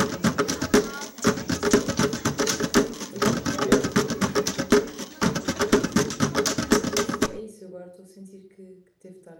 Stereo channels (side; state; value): both; identical; correlation 1.00